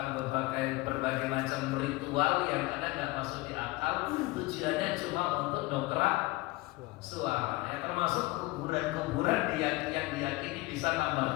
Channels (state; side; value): quieter; right; 21.3 dB